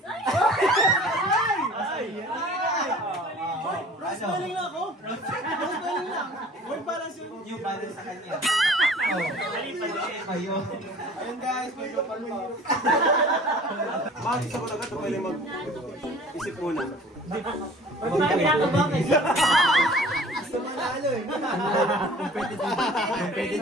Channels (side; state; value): both; normal; correlation 0.48